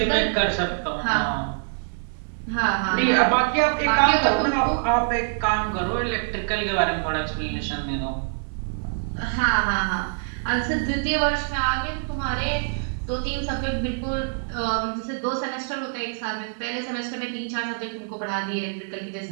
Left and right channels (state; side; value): silent; left; digital silence